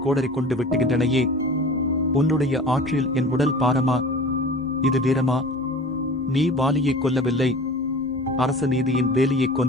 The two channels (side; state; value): both; normal; correlation 0.39